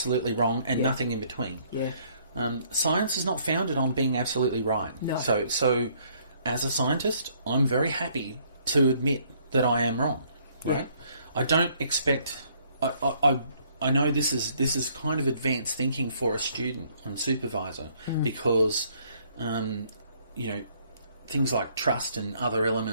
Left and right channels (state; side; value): inverted; both; correlation -0.64